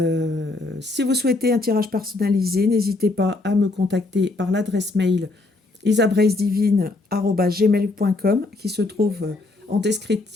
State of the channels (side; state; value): right; quieter; 3.2 dB